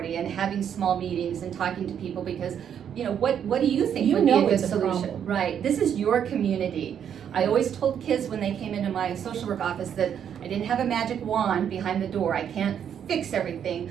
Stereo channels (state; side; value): quieter; left; 8.7 dB